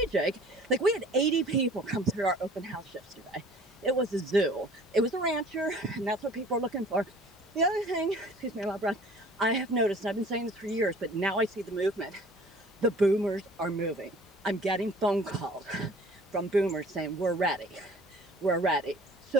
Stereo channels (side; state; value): both; normal; correlation 0.49